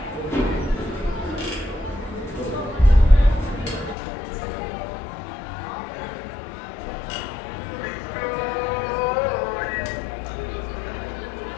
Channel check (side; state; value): right; drops out; at 4.0 s